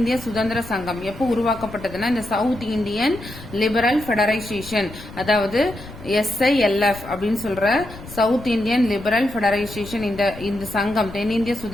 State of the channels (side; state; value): left; noise; rumble, 15 dB below the sound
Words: சுதந்திர சங்கம் எப்போ உருவாக்கப்பட்டதுன்னா இந்த சவுத் இந்தியன் லிபரல் ஃபெடரைசேஷன், அதாவது SILF அப்படின்னு சொல்ற சவுத் இந்தியன் லிபரல் ஃபெடரைசேஷன், இந்த சங்கம் தென்னிந்திய